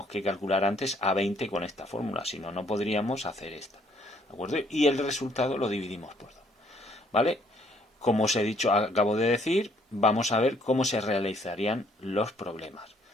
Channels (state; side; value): normal; both; correlation 0.65